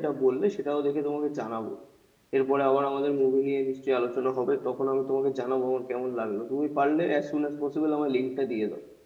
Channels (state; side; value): identical; both; correlation 1.00